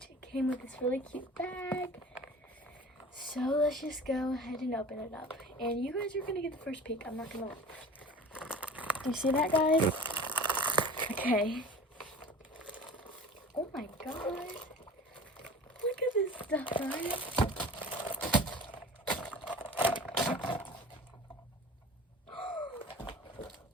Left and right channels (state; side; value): normal; both; correlation 0.40